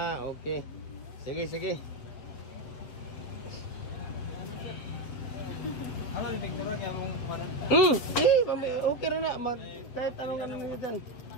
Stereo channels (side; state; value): right; late; 7.6 ms